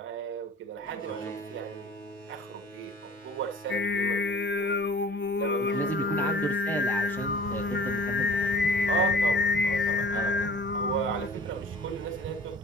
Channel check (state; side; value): normal; both; correlation 0.47